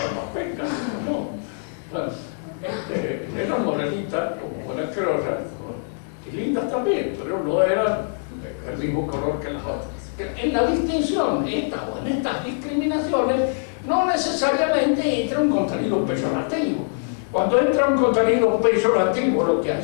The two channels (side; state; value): right; silent; digital silence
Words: las pecas. No. Eran morenitas, como buenas criollas, y lindas también, pero no eran el mismo color que las otras. En la distinción, en estas discriminaciones, no necesariamente entra un contenido peyorativo. Cuando entra un contenido peyorativo, lo que